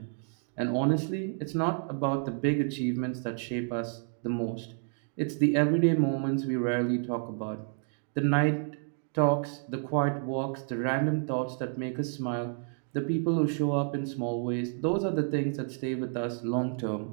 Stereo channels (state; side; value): silent; left; 58 dB below the other